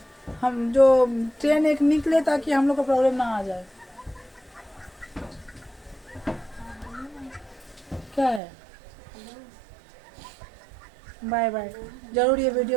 हम जो ट्रेन एक निकले ताकि हम लोग को प्रॉब्लम ना आ जाए। क्या है? Bye bye. जरूर ये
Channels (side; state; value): left; drops out; at 8.4 s